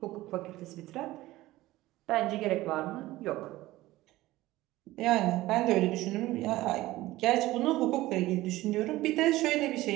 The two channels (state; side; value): quieter; left; 17.3 dB